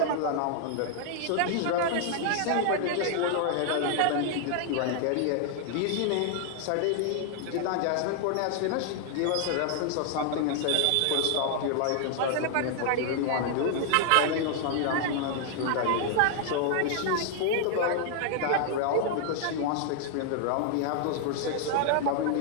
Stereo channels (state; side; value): different; both; correlation 0.00